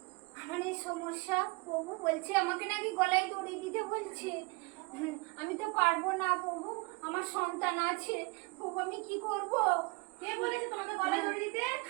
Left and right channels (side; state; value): left; quieter; 27.5 dB